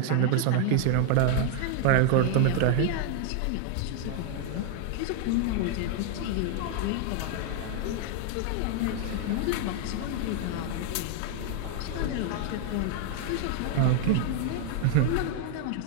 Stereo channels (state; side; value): different; both; correlation 0.00